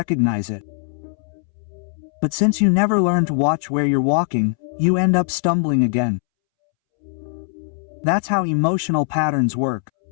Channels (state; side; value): silent; right; 65 dB below the other